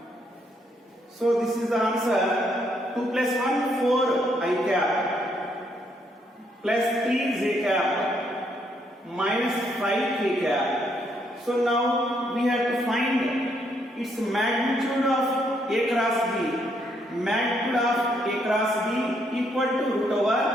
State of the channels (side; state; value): both; normal; correlation 0.73